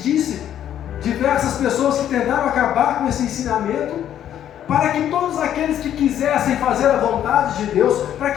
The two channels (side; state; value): right; quieter; 10.6 dB